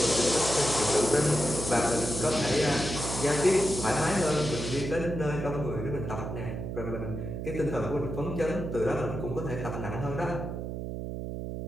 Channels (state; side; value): noise; right; hum, 5 dB below the sound